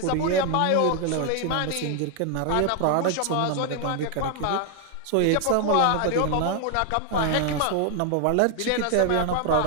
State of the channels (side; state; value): both; different; correlation 0.01